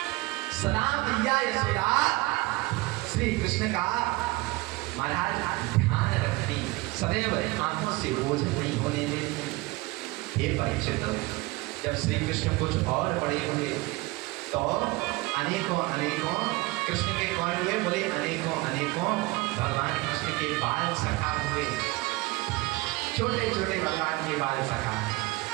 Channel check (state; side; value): quieter; left; 22.4 dB